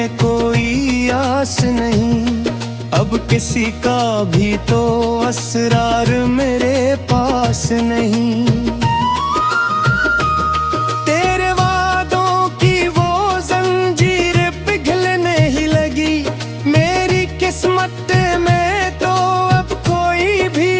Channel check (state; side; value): identical; both; correlation 1.00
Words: कोई आस नहीं, अब किसी का भी तो असरार मेरे पास नहीं। तेरे वादों की वो जंजीर पिघलने ही लगी, मेरी किस्मत में तो अब कोई भी